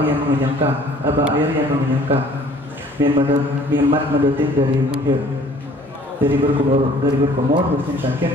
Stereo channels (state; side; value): normal; both; correlation 0.54